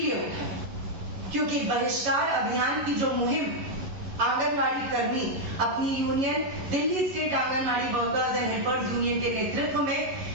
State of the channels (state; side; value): late; left; 11 ms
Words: उठा है क्योंकि बहिष्कार अभियान की जो मुहिम आंगनवाड़ी कर्मी अपनी union Delhi state anganwadi workers and helpers union के नेतृत्व में